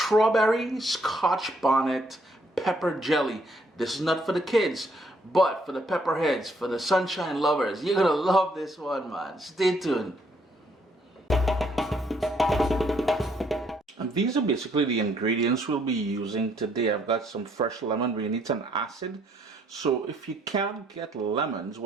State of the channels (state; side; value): normal; both; correlation 0.69